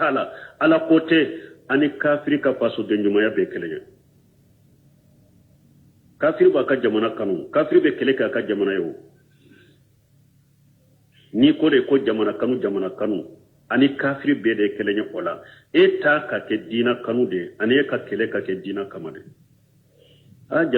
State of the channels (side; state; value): both; identical; correlation 1.00